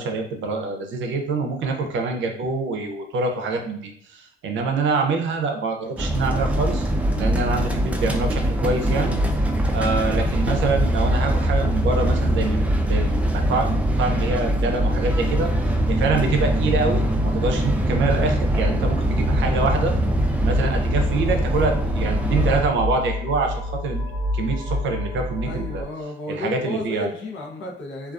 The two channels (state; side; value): normal; both; correlation 0.63